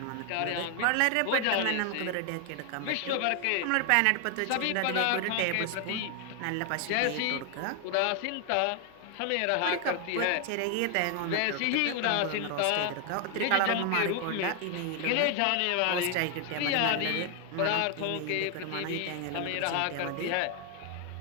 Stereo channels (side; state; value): both; different; correlation 0.00